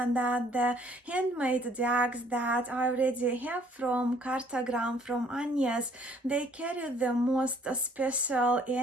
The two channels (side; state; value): both; normal; correlation 0.61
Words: that the handmade decks that I already have from Kartograme, from Agnes, they carry the most special